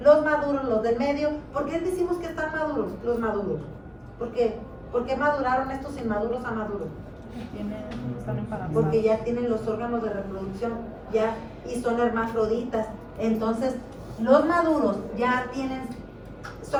los maduros, los del medio. ¿Por qué decimos que están maduros? Los maduros. ¿Por qué? ¿Por qué maduraron estos inmaduros a maduros? Porque ya tienen los órganos de reproducción ya y son hermafroditas. Entonces, Los maduros ya tienen,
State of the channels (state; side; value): identical; both; correlation 1.00